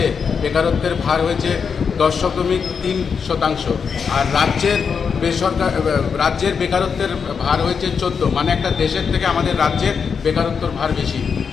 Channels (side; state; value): right; quieter; 6.1 dB